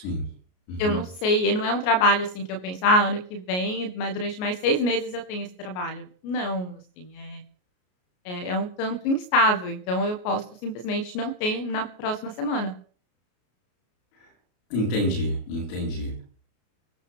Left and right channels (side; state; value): right; late; 33 ms